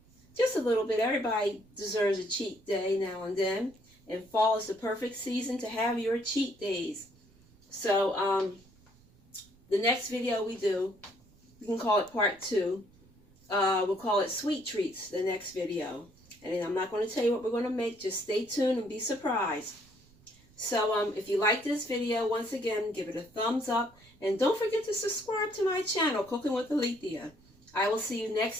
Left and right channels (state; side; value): noise; right; rumble, 28 dB below the sound